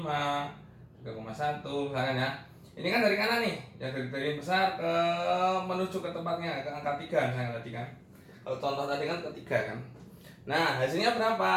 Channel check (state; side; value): identical; both; correlation 1.00